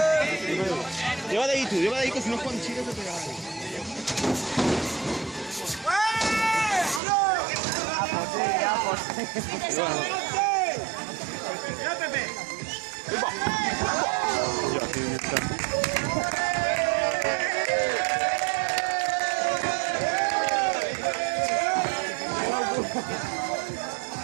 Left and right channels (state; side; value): drops out; left; at 7.0 s